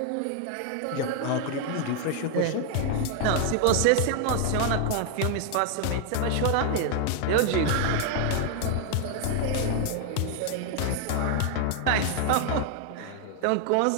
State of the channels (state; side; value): different; both; correlation 0.00